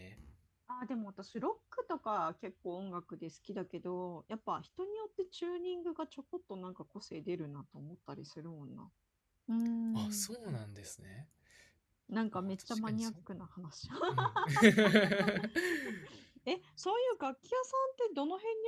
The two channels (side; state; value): both; identical; correlation 1.00